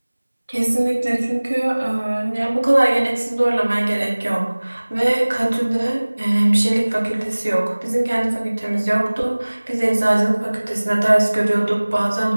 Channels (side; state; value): both; inverted; correlation -1.00